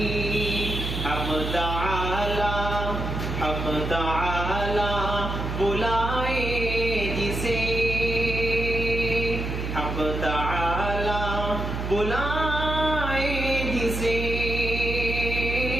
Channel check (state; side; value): noise; right; hum, 4 dB below the sound